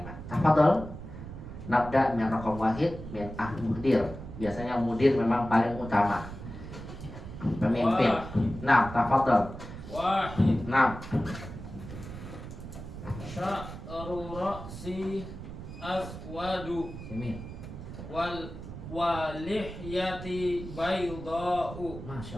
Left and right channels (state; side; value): noise; right; rumble, 11 dB below the sound